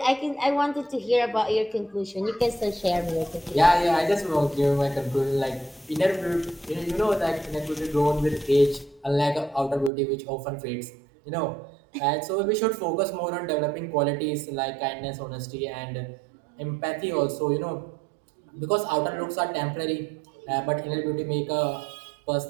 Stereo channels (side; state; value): left; drops out; at 9.9 s